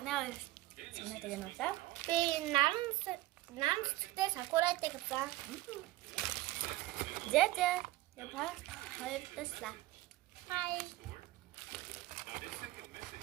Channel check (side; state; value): left; quieter; 17.1 dB